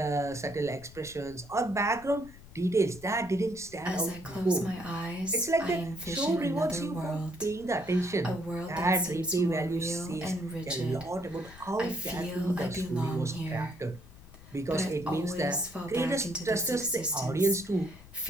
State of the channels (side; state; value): left; noise; rumble, 20 dB below the sound